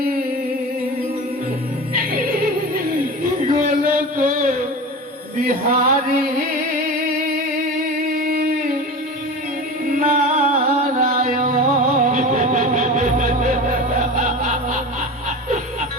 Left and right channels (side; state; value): both; normal; correlation 0.30